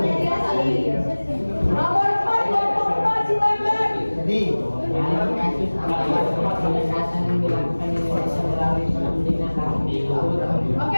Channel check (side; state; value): both; inverted; correlation -1.00